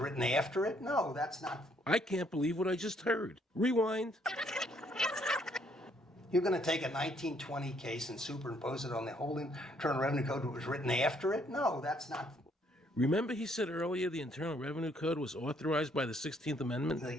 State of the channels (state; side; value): normal; both; correlation 0.68